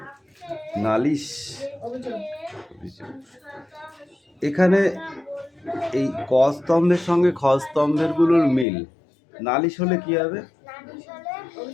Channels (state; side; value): drops out; right; at 8.7 s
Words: নালিশ, এখানে এই ক স্তম্ভের সঙ্গে খ স্তম্ভের গুলোর মিল। নালিশ হলে কি হবে?